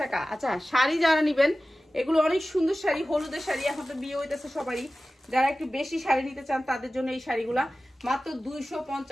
টাকা। আচ্ছা শাড়ি যারা নিবেন, এগুলো অনেক সুন্দর শাড়ি, হলুদের শাড়ি, এখন তো বিয়ে হইতেছে সবারই, যারা একটু বেশি শাড়ি নিতে চান তাদের জন্য এই শাড়িগুলা মাত্র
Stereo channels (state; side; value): normal; both; correlation 0.96